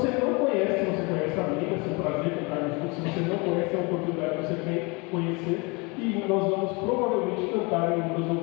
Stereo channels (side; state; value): right; quieter; 28.6 dB